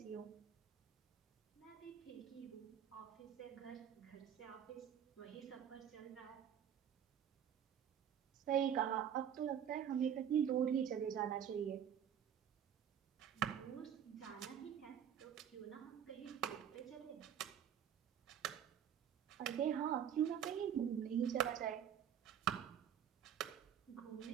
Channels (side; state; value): left; quieter; 9.0 dB